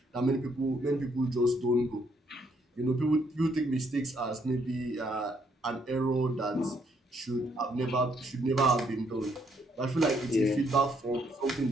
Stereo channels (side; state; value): both; normal; correlation 0.71